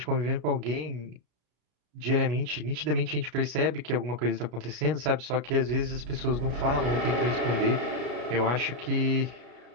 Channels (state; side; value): late; left; 33 ms